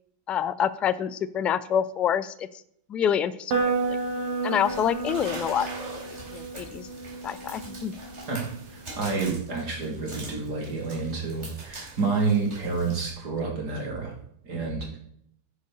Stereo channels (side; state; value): left; late; 3.3 ms